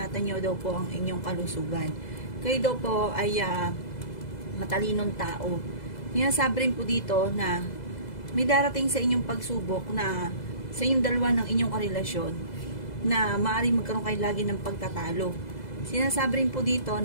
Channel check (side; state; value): right; late; 2.0 ms